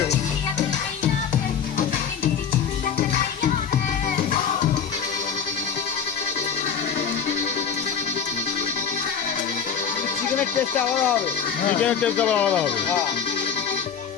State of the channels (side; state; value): right; quieter; 7.2 dB